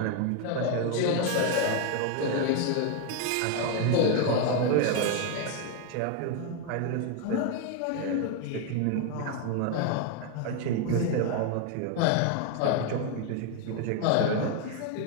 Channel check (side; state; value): both; different; correlation 0.01